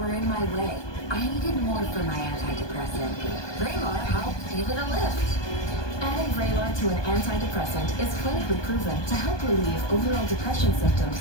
in my way. I needed more for my antidepressant. Vraylar helped give it a lift. Adding Vraylar to an antidepressant is clinically proven to help relieve overall depression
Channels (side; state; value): right; late; 1.2 ms